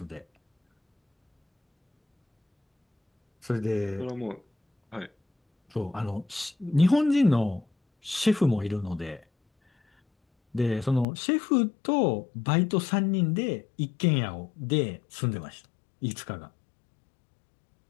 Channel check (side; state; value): right; drops out; at 11.1 s